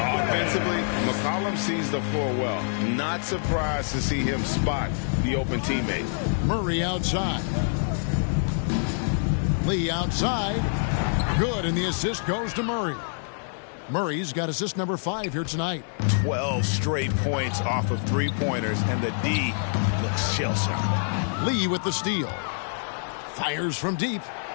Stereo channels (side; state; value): right; silent; digital silence